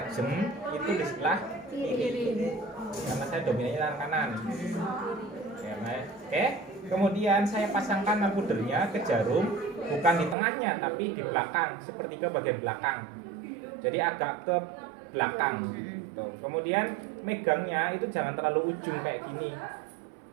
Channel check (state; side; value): drops out; left; at 10.4 s